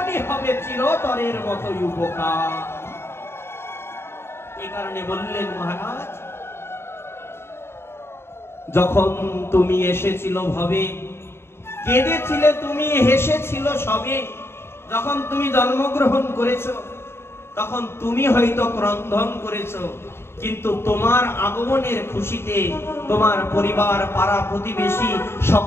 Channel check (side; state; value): right; late; 0.12 ms